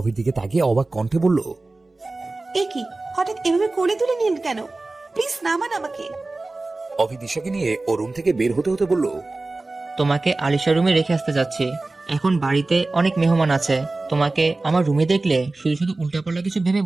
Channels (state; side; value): quieter; left; 3.2 dB